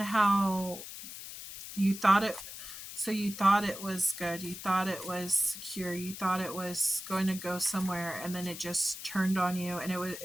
how you thought it. So you thought it was good. You thought it was secure. You thought it was going to go somewhere, and then it just turned on you. And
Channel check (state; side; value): noise; left; hiss, 11 dB below the sound